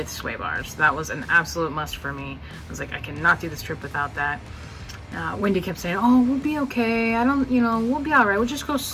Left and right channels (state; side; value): identical; both; correlation 1.00